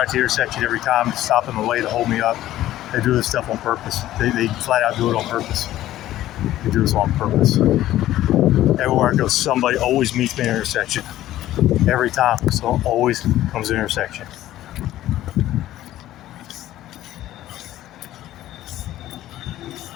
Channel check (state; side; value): quieter; right; 14.0 dB